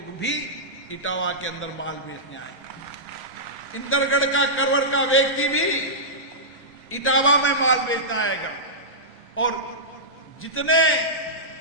भी इटावा के अंदर माल बेचने आए, इंदरगढ़ का, करवर का व्यक्ति भी इटावा में माल बेचना आएगा, और जितने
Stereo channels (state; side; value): normal; both; correlation -0.14